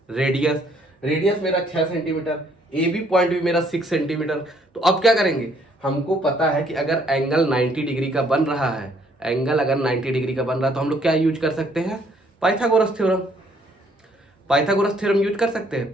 रेडियस। रेडियस मेरा 6 सेंटीमीटर, AB पॉइंट भी मेरा 6 सेंटीमीटर। तो अब क्या करेंगे, हमको पता है कि अगर एंगल 90 डिग्री का बन रहा है, एंगल अगर 90 डिग्री का बन रहा है तो हम लोग क्या यूज कर सकते हैं? Pythagoras theorem. Pythagoras theorem use कर सकते हैं।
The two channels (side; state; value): both; normal; correlation 0.65